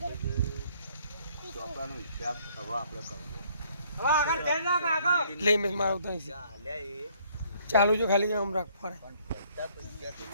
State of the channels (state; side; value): inverted; both; correlation -0.63